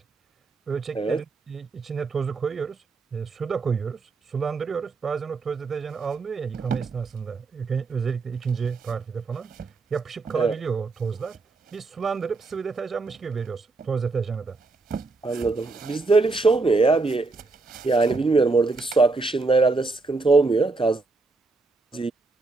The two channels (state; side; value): quieter; left; 3.7 dB